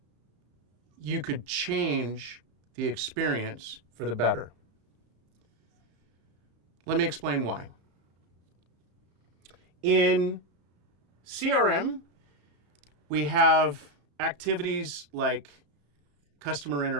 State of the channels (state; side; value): late; left; 35 ms